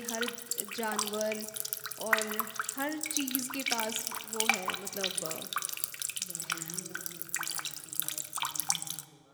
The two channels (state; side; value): identical; both; correlation 1.00